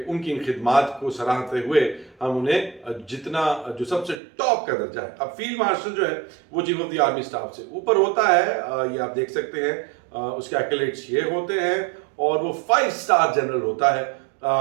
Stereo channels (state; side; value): drops out; left; at 4.2 s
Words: ان کی ان خدمات کو سراہتے ہوئے ہم انہیں جتنا جو سب سے ٹاپ کا درجہ ہے, اب فیلڈ مارشل جو ہے وہ chief of the army staff سے اوپر ہوتا ہے, یہ آپ دیکھ سکتے ہیں, اس کے ایکلیٹس یہ ہوتے ہیں, اور وہ 5 اسٹار جنرل ہوتا